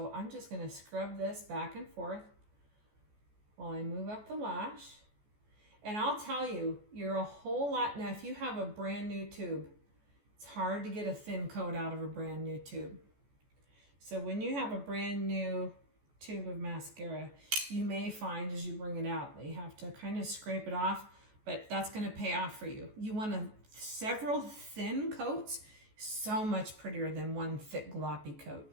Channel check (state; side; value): late; left; 14 ms